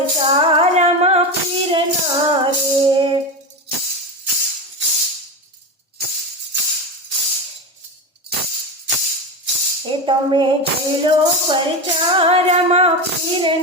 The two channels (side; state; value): both; normal; correlation 0.19